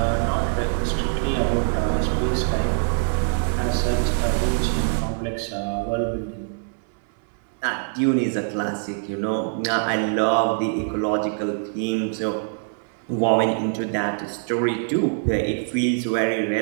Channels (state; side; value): silent; left; digital silence